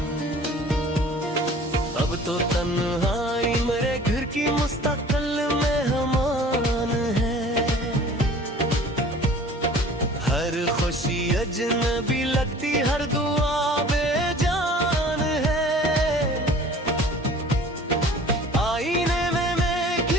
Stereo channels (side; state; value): both; normal; correlation 0.47